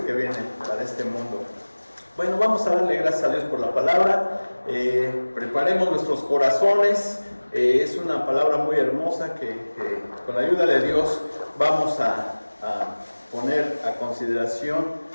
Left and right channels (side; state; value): both; inverted; correlation -1.00